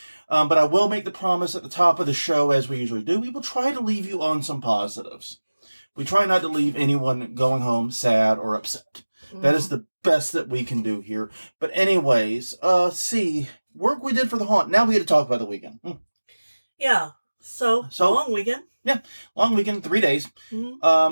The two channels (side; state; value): both; inverted; correlation -1.00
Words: But I will make the promise at the top of the show, as we usually do, we will try to leave you on some positives. We try not to leave anyone going home sad or upset. That is the best that we can do here. But anyways, work we did for the haunt. Now we get to talk about the weekend. Yeah. So long weekend. Yeah, long weekend, 3 days.